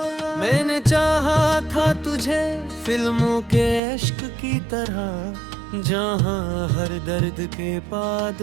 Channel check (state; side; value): drops out; left; at 3.8 s